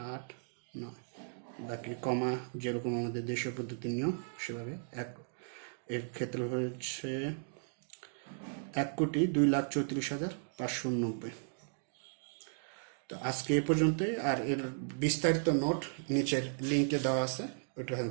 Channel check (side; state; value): left; silent; digital silence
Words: 8, 9, বাকি কমা যেরকম আমাদের দেশীয় পদ্ধতির নিয়ম সেভাবে। এর ক্ষেত্রে হচ্ছে 1,02,34,590। তো আজকে এ পর্যন্তই। আর এর বিস্তারিত নোট নিচের লিঙ্কে দেওয়া আছে, ওইখান